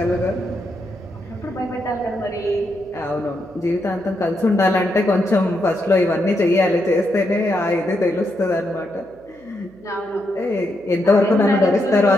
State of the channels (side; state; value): right; noise; hum, 29 dB below the sound